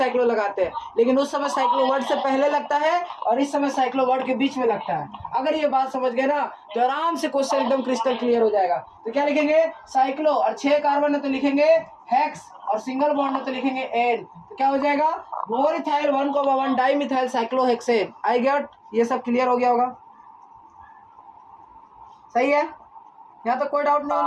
लगाते हैं, लेकिन उस समय साइक्लो वर्ड से पहले लगता है और इस समय साइक्लो वर्ड के बीच में लगता है। अगर ये बात समझ गए ना तो आराम से क्वेश्चन एकदम क्रिस्टल क्लियर हो जाएगा। तो क्या लिखेंगे साइक्लो, और 6 कार्बन है तो लिखेंगे हेक्स, और सिंगल बॉन्ड है तो लिखेंगे एन, तो क्या हो जाएगा 4 ethyl 1,1 di methyl cyclohexane. I get, ये सब क्लियर हो गया होगा, सही है, यहाँ तो कोई डाउट नहीं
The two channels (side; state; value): both; identical; correlation 1.00